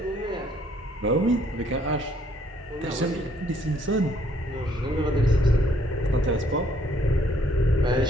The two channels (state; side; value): normal; both; correlation 0.65